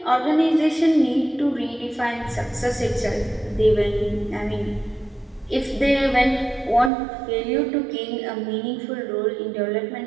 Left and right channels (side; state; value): left; drops out; at 6.9 s